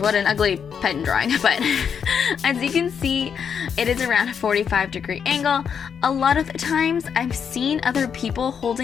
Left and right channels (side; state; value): right; quieter; 7.2 dB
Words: what an ugly pen drawing, but as you can see, it is around a 45-degree angle. A lot of the times, I've seen other people